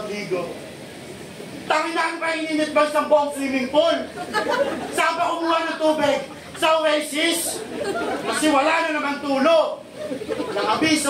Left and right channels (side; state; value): both; identical; correlation 1.00